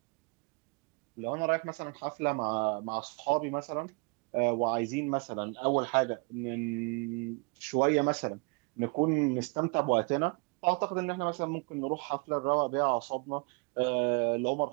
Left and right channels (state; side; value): quieter; left; 32.0 dB